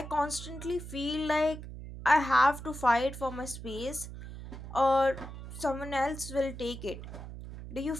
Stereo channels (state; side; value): noise; right; hum, 11 dB below the sound